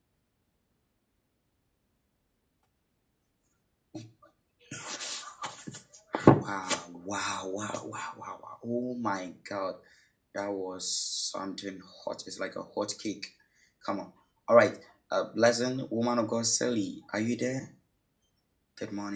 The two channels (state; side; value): identical; both; correlation 1.00